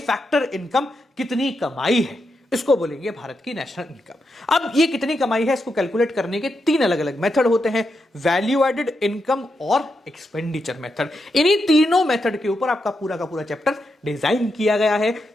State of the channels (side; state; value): both; normal; correlation 0.85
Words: इनकम कितनी कमाई है, इसको बोलेंगे भारत की नेशनल इनकम। अब ये कितनी कमाई है इसको कैलकुलेट करने के 3 अलग अलग मेथड होते हैं, वैल्यू एडेड, इनकम और एक्सपेंडिचर मेथड। इन्हीं तीनों मेथड के ऊपर आपका पूरा का पूरा चैप्टर डिजाइन किया गया है।